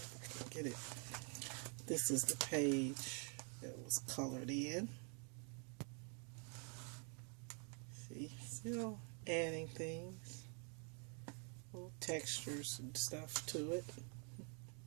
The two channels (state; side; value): quieter; left; 39.5 dB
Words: I can get it. This is the page that was colored in. See, still adding things, little textures and stuff to it.